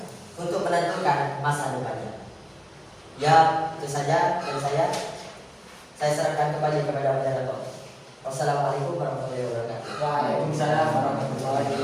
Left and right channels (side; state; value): both; identical; correlation 1.00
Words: untuk menentukan masa depannya. Ya, itu saja dari saya. Saya serahkan kembali kepada moderator. Wassalamualaikum warahmatullahi wabarakatuh. Waalaikumsalam